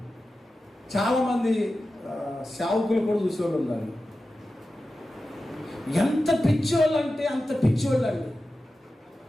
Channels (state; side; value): normal; both; correlation 0.93